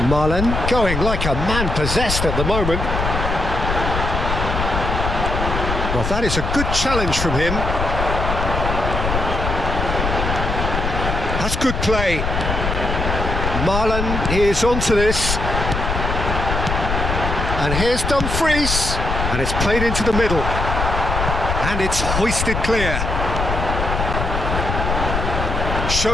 Marlen going like a man possessed at the moment. Well, that is a good challenge from him. That's good play. Marlen is onto this. And here's Dumfries. And it's played into the middle. And it's hoisted clear.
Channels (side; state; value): left; noise; rumble, 2 dB below the sound